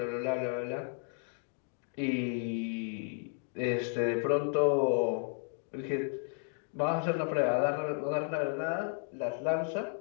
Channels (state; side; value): silent; right; 55 dB below the other